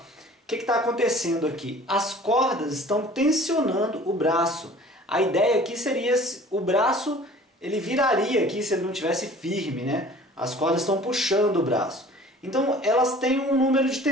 o que está acontecendo aqui? As cordas estão tensionando o braço. A ideia aqui seria o braço, ele viraria aqui se ele não tivesse firme, né? As cordas estão puxando o braço. Então elas têm um número de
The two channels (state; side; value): normal; both; correlation 0.47